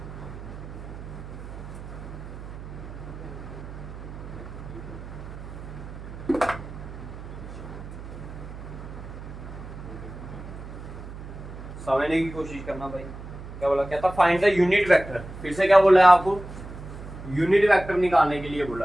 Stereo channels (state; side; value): noise; right; hum, 12 dB below the sound